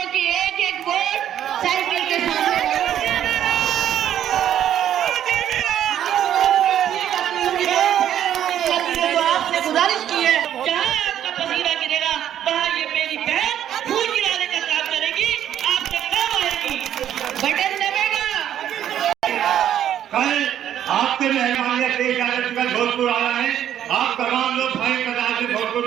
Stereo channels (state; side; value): quieter; left; 10.6 dB